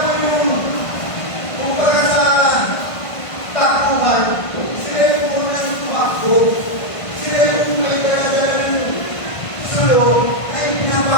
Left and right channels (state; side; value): late; right; 1.5 ms